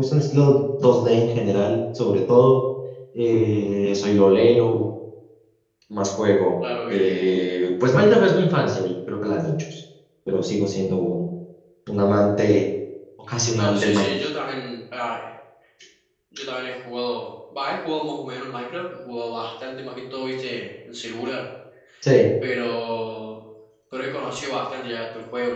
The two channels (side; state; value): both; identical; correlation 1.00